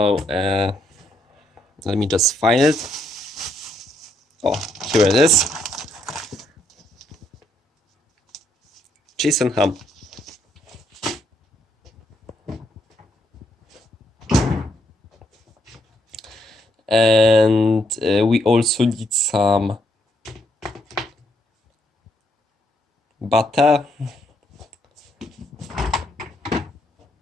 let me just find it. Oh, here it is. Cheese and ham. And we also need some butter.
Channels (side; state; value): both; normal; correlation 0.74